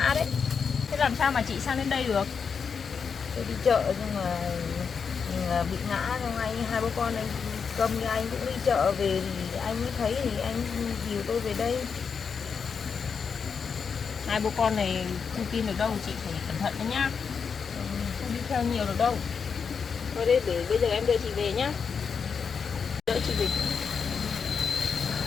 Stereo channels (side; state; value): right; quieter; 6.1 dB